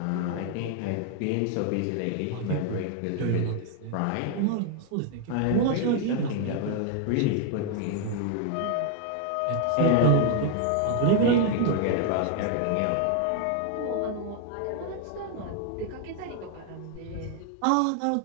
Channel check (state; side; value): different; both; correlation 0.00